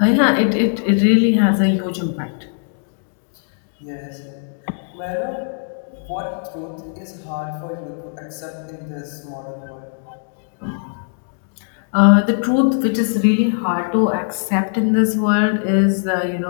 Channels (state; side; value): silent; right; digital silence